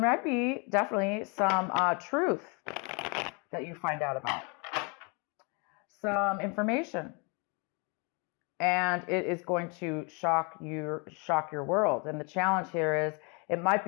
be definitely some truth that you find out about, some information, and it is going to shock your world. And the challenge here is it might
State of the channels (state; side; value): quieter; right; 32.9 dB